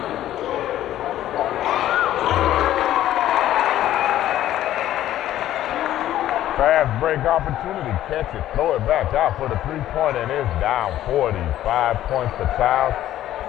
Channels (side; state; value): right; quieter; 12.9 dB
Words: Fast break opportunity, catch it, throw it back out for the three-pointer, and it's down 40. 5 points for Chiles,